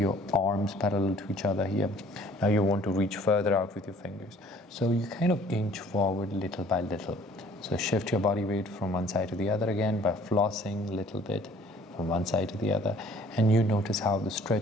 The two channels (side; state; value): both; normal; correlation 0.55